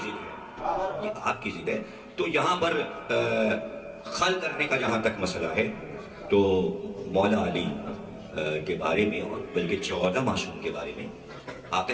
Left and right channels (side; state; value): both; identical; correlation 1.00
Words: ہے، یہ آپ کی ضد ہے. تو یہاں پر خلق کرنے کا جہاں تک مسئلہ ہے تو مولا علی کے بارے میں اور بلکہ 14 معصوم کے بارے میں آقا